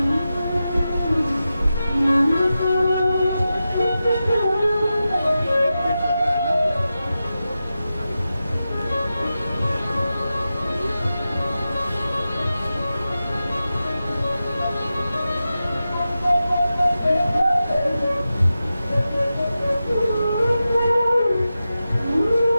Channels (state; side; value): inverted; both; correlation -0.92